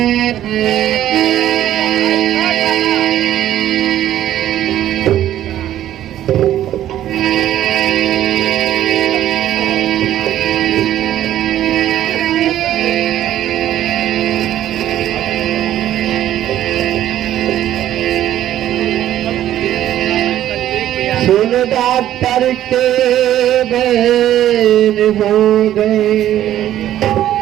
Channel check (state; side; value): quieter; left; 12.3 dB